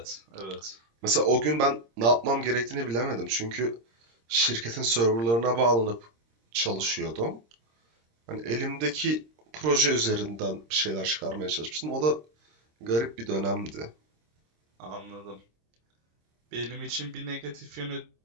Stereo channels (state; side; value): late; left; 26 ms